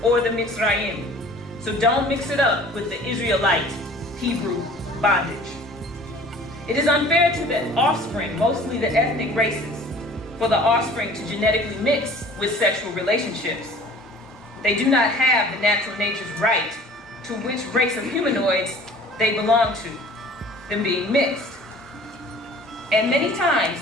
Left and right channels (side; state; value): both; normal; correlation 0.47